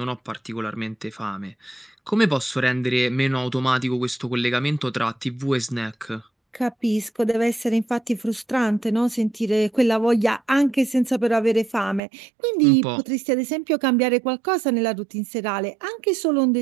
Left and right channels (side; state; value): left; drops out; at 12.0 s